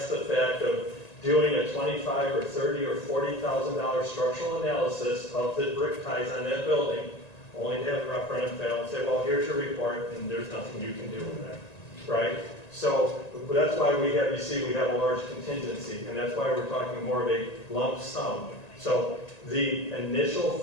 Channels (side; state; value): right; late; 1.9 ms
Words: the fact of doing a $25,000 or $30,000 or $40,000 structural analysis of the brick ties on that building, only to have a referendum fail and say, well, here's your report, and there's nothing you can do with that, right? So that's why we have a large contingency, and that's why we're talking more of a lump sum. So the initial